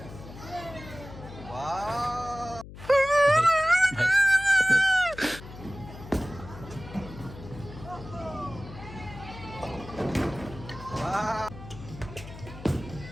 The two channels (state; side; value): noise; left; hum, 14 dB below the sound